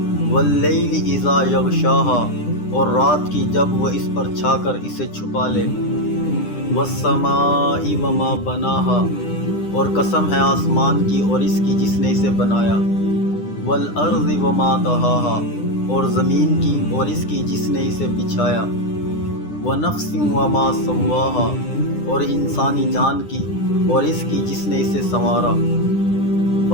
واللیل اذا یغشاها، اور رات کی جب وہ اس پر چھا کر اسے چھپا لے، والسماء وما بناها، اور قسم ہے آسمان کی اور اس کی جس نے اسے بنایا، والارض وما طحاها، اور زمین کی اور اس کی جس نے اسے بچھایا، ونفس وما سواها، اور انسانی جان کی اور اس کی جس نے اسے سنوارا،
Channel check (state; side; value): late; right; 9.9 ms